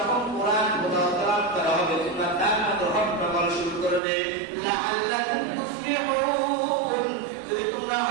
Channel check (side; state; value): left; drops out; at 4.0 s